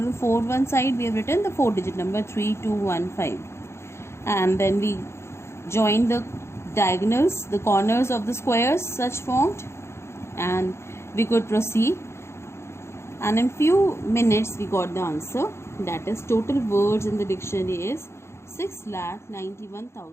the 4 side we have written the 4-digit number 3215. And then we join the diagonals, the corners of the squares such formed, and we could proceed. And in few minutes we got the answer. That is, total words in the dictionary is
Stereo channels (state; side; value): late; right; 0.13 ms